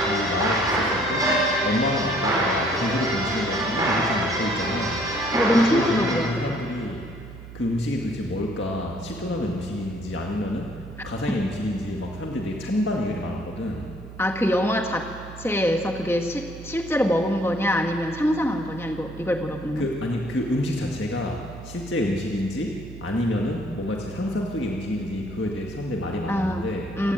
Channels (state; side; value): noise; right; hum, 14 dB below the sound